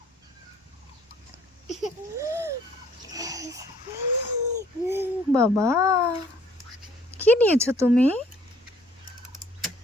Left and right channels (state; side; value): normal; both; correlation 0.59